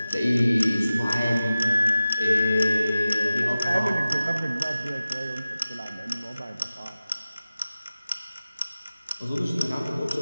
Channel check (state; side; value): inverted; both; correlation -0.95